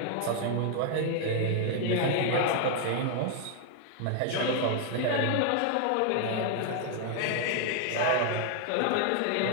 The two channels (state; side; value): different; both; correlation 0.00